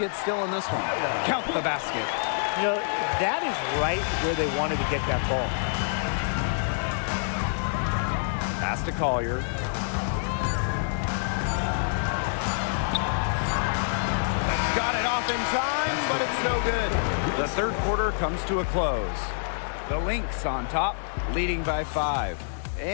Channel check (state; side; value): silent; right; digital silence